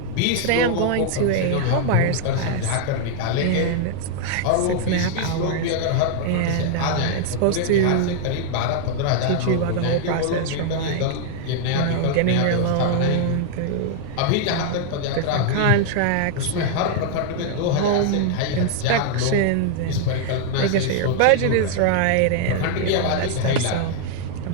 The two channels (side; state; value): both; different; correlation 0.00